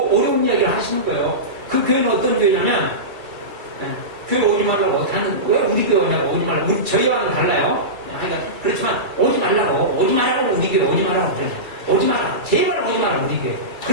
이야기를 하시는 거예요. 그 교회는 어떤 교회냐면 교회 오지 말라고 왜 우리 교회 오냐고 오지 말라고 저희와는 달라요. 그렇지만 오지 말라고 우리 교회 오지 말라고 그래요. 오지 마라 제발 오지 마라 우리 교회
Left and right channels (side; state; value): left; late; 2.4 ms